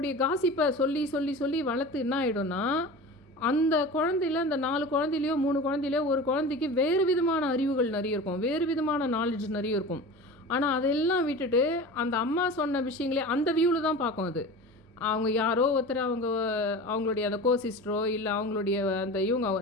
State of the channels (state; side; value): normal; both; correlation 0.34